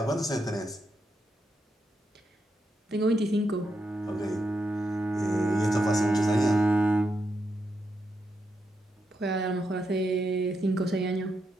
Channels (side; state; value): both; normal; correlation 0.83